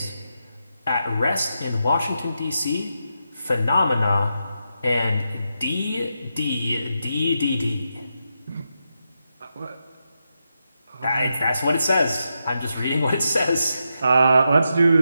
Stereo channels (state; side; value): inverted; both; correlation -0.86